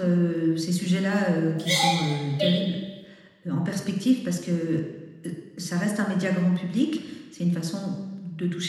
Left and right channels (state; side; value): identical; both; correlation 1.00